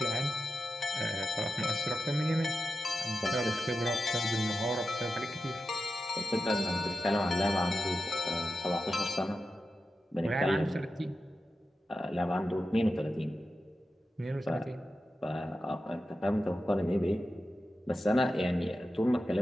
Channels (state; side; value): normal; both; correlation 0.91